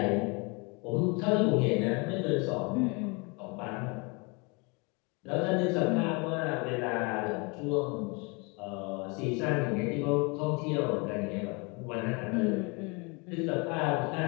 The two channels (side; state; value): right; quieter; 30.2 dB